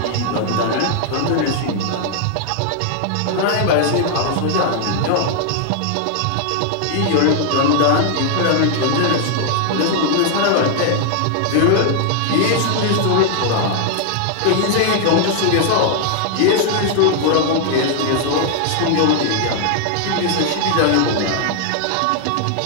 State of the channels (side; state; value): both; different; correlation 0.00